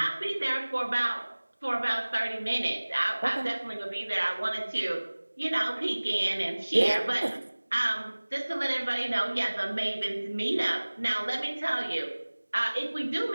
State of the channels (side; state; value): both; inverted; correlation -1.00